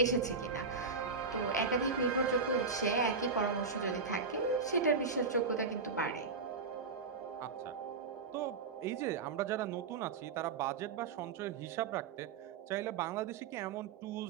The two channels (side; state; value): left; quieter; 4.6 dB